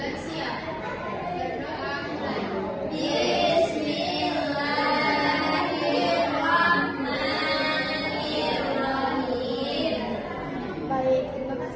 Berdoa mulai. Baik, terima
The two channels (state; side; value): identical; both; correlation 1.00